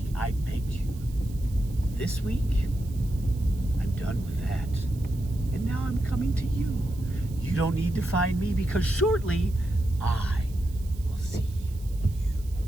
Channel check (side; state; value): right; noise; hiss, 23 dB below the sound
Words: I begged you. This week, I'm done with that. And now I'm coming to you. You don't need to find me because shortly I will see you.